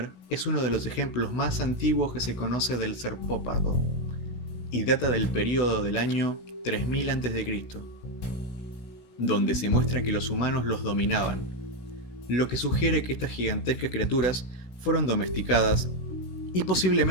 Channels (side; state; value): right; late; 16 ms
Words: es uno de los ejemplos más antiguos que se conoce del serpópardo, y data del período del año 3000 a.C., donde se muestra que los humanos los dominaban, lo que sugiere que estas gigantescas criaturas fueron domesticadas y